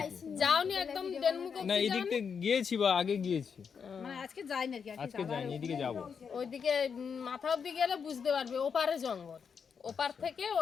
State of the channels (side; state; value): right; quieter; 6.4 dB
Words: কি। যাওনি একদম ডেনমুখ না এই দিক থেকে গিয়েছি বা আগে গিয়েছি, মানে আজকে যাইনি আর কি, আজকে যাইনি, এদিকে যাবো। ওইদিকে মাথা অব্দি গেলে বুঝতে পারবে, ওপারে জঙ্গল। ওপার থেকে